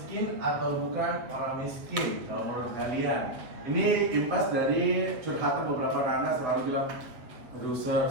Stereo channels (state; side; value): late; left; 7.8 ms